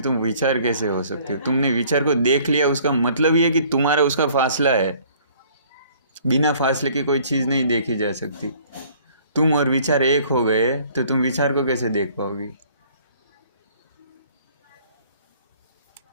तुम विचार कैसे हो सकती हो? तुमने विचार को देख लिया, उसका मतलब ये है कि तुम्हारा उसका फासला है। बिना फासले की कोई चीज़ नहीं देखी जा सकती। तुम और विचार एक हो गए तो तुम विचार को कैसे देख पाओगी?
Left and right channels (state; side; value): inverted; both; correlation -0.56